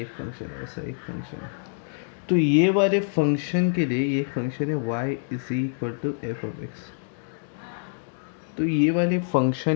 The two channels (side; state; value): right; silent; digital silence